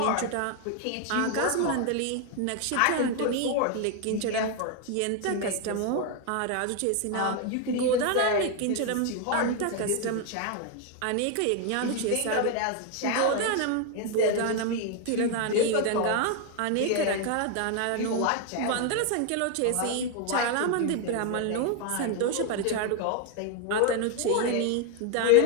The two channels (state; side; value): different; both; correlation 0.01